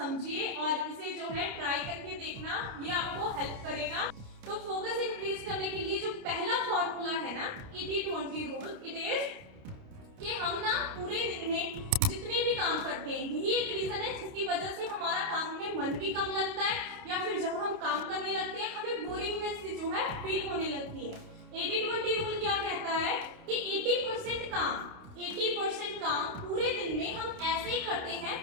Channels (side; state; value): left; late; 29 ms